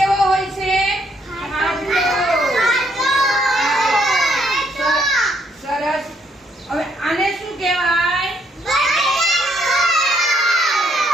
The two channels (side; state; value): both; normal; correlation 0.70